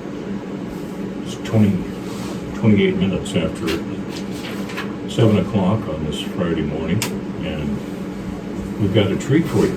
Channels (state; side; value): identical; both; correlation 1.00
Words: It's 28 minutes after 7 o'clock on this Friday morning, and we've got a treat for you